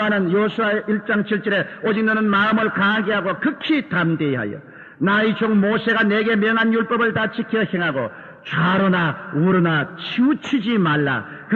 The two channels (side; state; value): both; identical; correlation 1.00